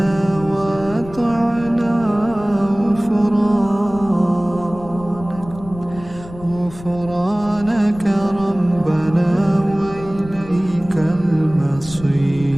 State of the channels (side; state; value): left; noise; rumble, 16 dB below the sound